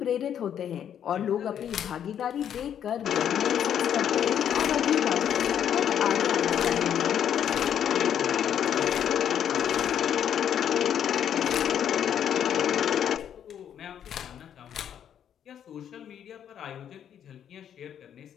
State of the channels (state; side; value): quieter; right; 9.3 dB